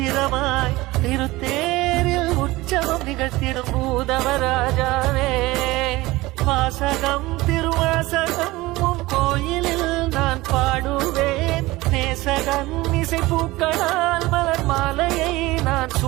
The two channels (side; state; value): left; quieter; 19.7 dB